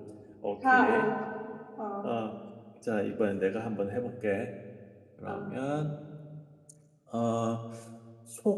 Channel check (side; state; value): both; identical; correlation 1.00